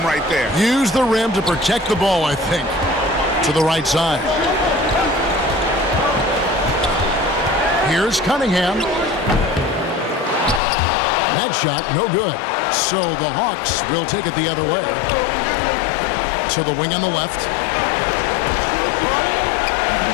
right there. Use the rim to protect the ball, I think. To the right side. Here's Cunningham. That shot, no good. So the Hawks will take it the other way. To the wing on the left.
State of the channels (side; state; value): right; drops out; at 10.6 s